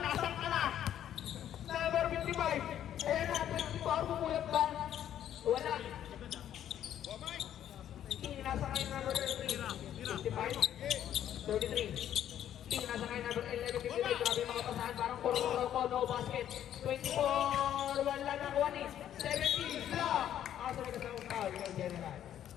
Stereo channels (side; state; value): right; quieter; 10.7 dB